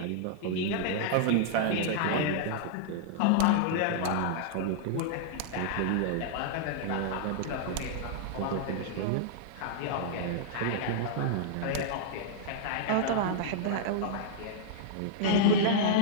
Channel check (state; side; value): different; both; correlation -0.01